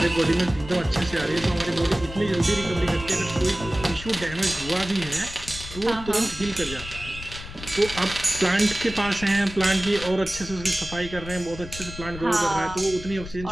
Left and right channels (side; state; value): left; noise; rumble, 12 dB below the sound